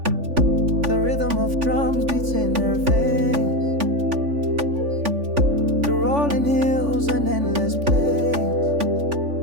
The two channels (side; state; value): left; late; 3.5 ms